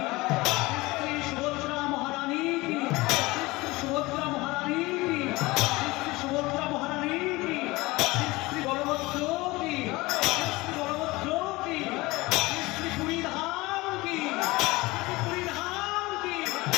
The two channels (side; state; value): right; quieter; 21.6 dB